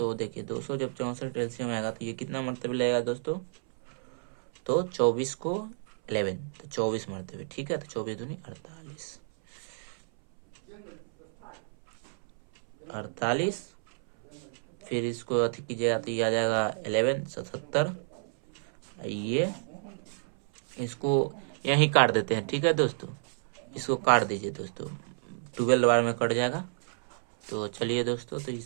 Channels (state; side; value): silent; left; 57 dB below the other